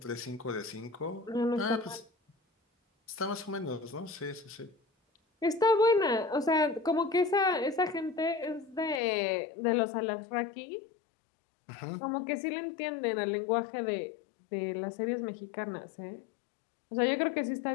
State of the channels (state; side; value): drops out; right; at 9.0 s